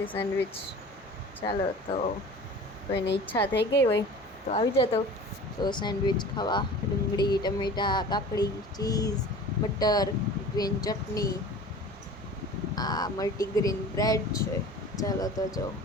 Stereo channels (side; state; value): both; normal; correlation 0.40